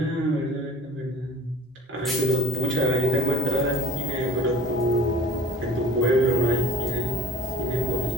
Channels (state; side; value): normal; both; correlation 0.47